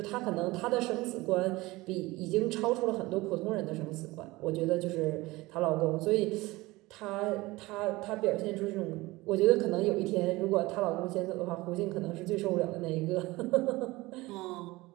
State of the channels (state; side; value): quieter; left; 20.6 dB